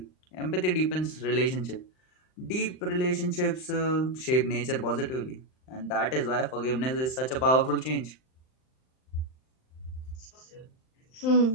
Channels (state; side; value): late; right; 39 ms